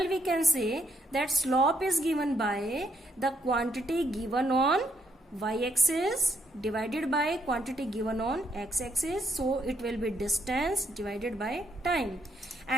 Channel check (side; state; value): both; normal; correlation 0.74